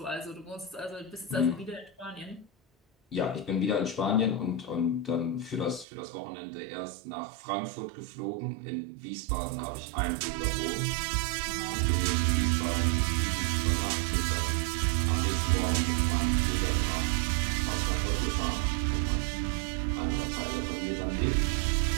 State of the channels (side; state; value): left; drops out; at 5.9 s